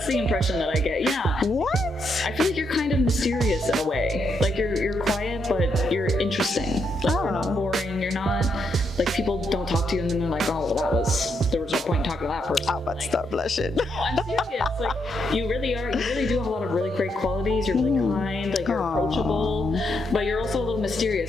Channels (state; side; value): normal; both; correlation 0.79